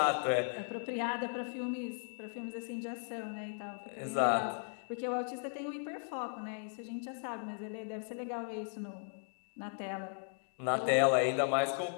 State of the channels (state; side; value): silent; right; digital silence